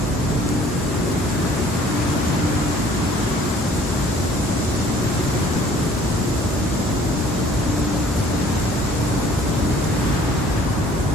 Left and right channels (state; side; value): normal; both; correlation 0.55